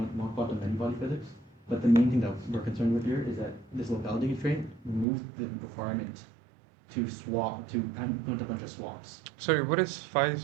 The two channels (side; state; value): left; drops out; at 5.1 s